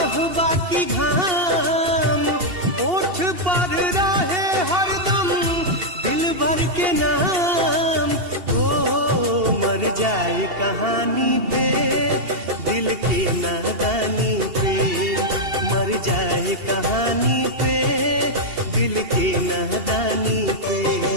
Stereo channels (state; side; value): late; left; 2.7 ms